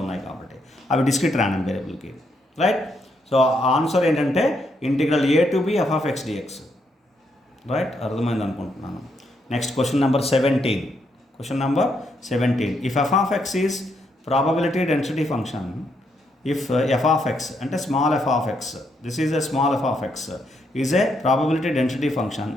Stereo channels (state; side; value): normal; both; correlation 0.77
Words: ఉన్నాయి కాబట్టి అవి డిస్క్రిట్ ర్యాండమ్ వేరియబుల్కి. రైట్, సో ఆన్సర్ ఏంటంటే integral A to B F of X dx. Right, అర్థమైంది అనుకుంటున్నాను. Next question number 17. Question number 17. If f of x is probability density function, if f of x and a small f of x, this is a small f of x, is a probability density function,